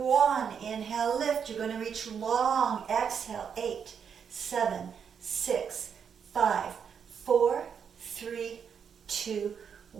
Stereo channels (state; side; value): quieter; left; 7.2 dB